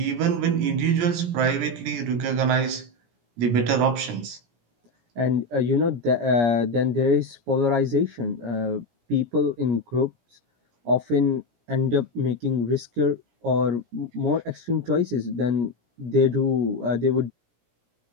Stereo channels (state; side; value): late; left; 17 ms